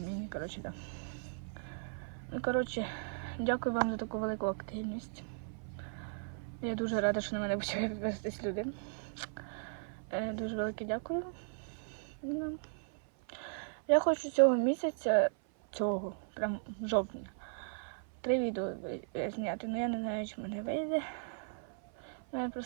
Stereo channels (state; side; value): silent; left; 53 dB below the other